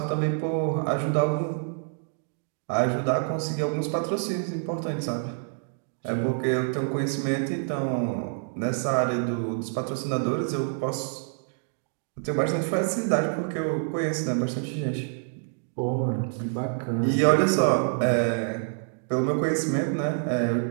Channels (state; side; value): silent; left; digital silence